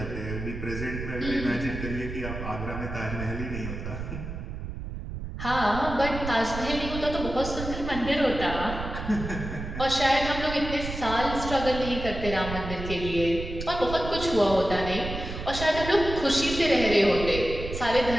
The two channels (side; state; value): right; noise; rumble, 7 dB below the sound